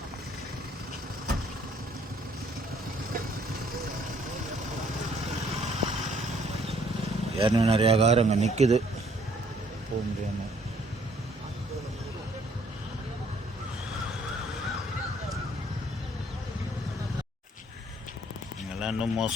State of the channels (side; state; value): both; normal; correlation 0.63